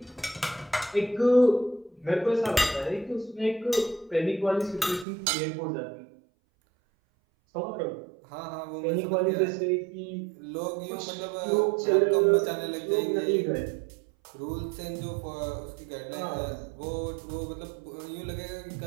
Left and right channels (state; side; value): drops out; left; at 5.1 s